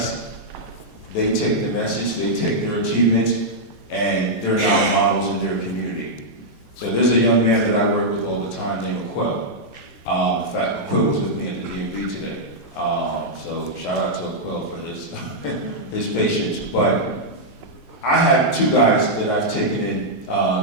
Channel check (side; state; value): left; late; 2.5 ms